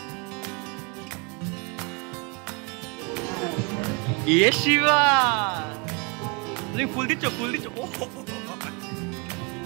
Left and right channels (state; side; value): quieter; left; 32.3 dB